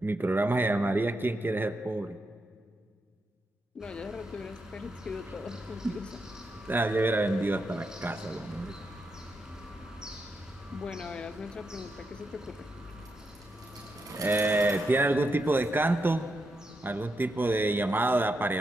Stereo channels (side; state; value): both; normal; correlation 0.83